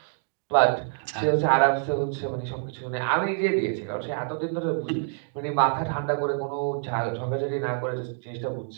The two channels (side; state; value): left; silent; digital silence